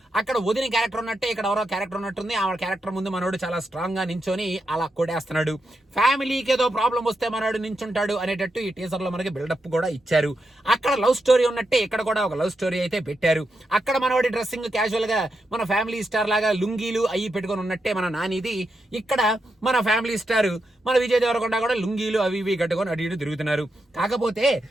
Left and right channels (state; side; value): normal; both; correlation 0.85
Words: అక్కడ వదిన క్యారెక్టర్ ఉన్నట్టే ఇక్కడ ఎవరో క్యారెక్టర్ ఉన్నట్టుంది. ఆ క్యారెక్టర్ ముందు మనోడు చాలా స్ట్రాంగ్ గా నించొని అలా కొడేస్తున్నాడు. ఫ్యామిలీకి ఏదో ప్రాబ్లం వస్తే మనోడు నించుంటాడు అనేటట్టు ఈ టీజర్ లో మనకి బిల్డప్ కూడా ఇచ్చారు. అక్కడ లవ్ స్టోరీ ఉన్నట్టే ఇక్కడ కూడా ఒక లవ్ స్టోరీ అయితే పెట్టారు. అక్కడ మనవాడి డ్రెస్సింగ్ క్యాజువల్ గా మన ఫ్యామిలీ స్టార్ లాగా లుంగీలు అయ్యి పెట్టుకొని ఉన్నట్టే మన నానిది. ఇక్కడ మన ఫ్యామిలీ స్టార్ మన విజయ్ దేవరకొండ కూడా లుంగీలు అవి ఇవి కట్టుకొని అటు ఇటు తిరుగుతున్నారు. కాకపోతే